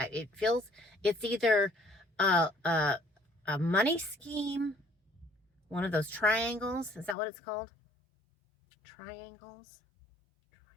feels, it's either a money scheme, one of those triangles. Is that what it's called? Triangles?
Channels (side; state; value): right; drops out; at 7.2 s